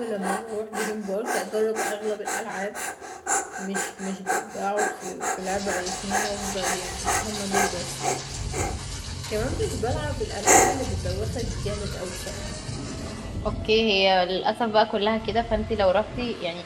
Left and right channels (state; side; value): identical; both; correlation 1.00